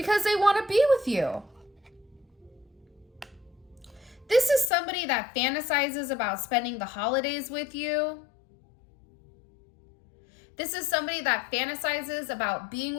they want to be with you. This is somebody that fantasizes about spending the holidays with you. This is somebody that fantasizes about being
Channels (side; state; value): right; drops out; at 4.7 s